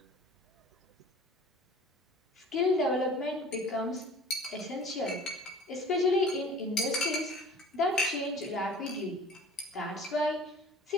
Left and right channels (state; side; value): normal; both; correlation 0.46